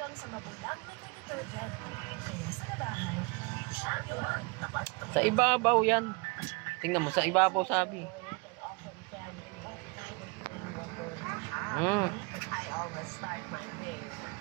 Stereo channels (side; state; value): left; quieter; 29.4 dB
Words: hanggang sa mabulang na detergent. Kaya sa labahan, champion. Sa ibabaw yan. Tingnan mo, sa ibabaw sabi. I always start my day.